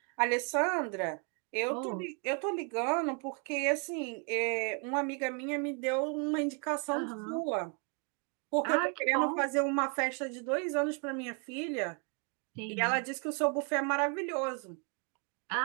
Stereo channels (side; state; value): left; quieter; 36.9 dB